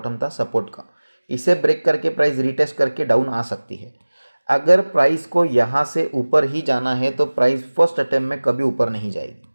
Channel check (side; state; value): both; inverted; correlation -1.00